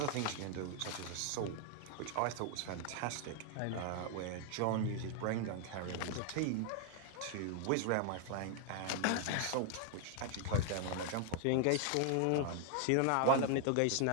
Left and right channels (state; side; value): different; both; correlation 0.01